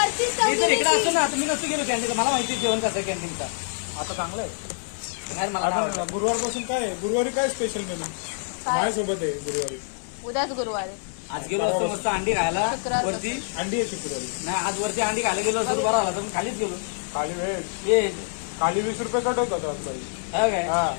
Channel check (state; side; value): silent; right; digital silence